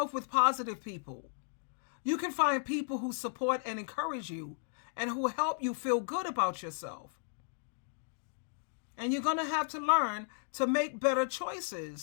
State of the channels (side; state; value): right; silent; digital silence